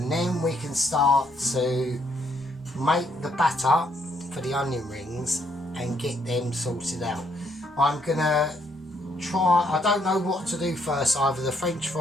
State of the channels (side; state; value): both; normal; correlation 0.71